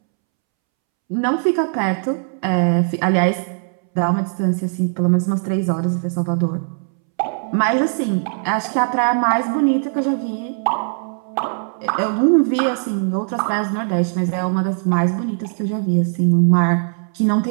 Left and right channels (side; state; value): left; silent; 66 dB below the other